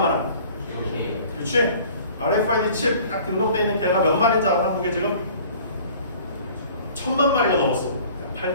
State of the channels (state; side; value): inverted; both; correlation -0.49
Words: 그렇지? RFID 칩 딱 등록되어 있는 개가 몇 마리인지 알아? 한국에 지금? 1000만 마리가 넘었어.